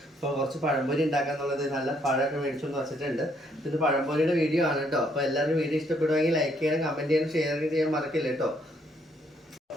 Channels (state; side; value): normal; both; correlation 0.70